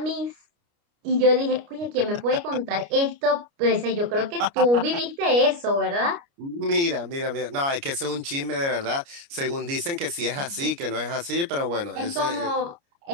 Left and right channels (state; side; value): late; left; 29 ms